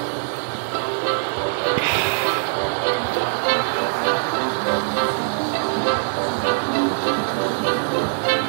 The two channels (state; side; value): silent; left; 64 dB below the other